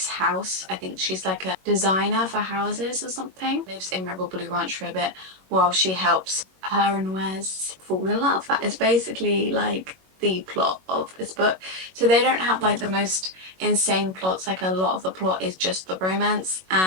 house. I think she's like a designer for houses or something. Lives in Rebel Blue Ranch for a bit while she helps her and Wes fall in love. That is basically like the plot of this book. So they don't have like the most insane plots, like a lot of the plot is just the romance,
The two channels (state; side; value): late; left; 21 ms